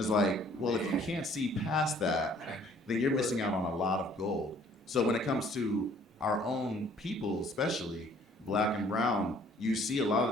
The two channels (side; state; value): both; normal; correlation 0.58